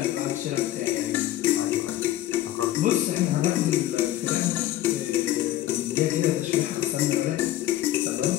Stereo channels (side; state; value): right; quieter; 14.0 dB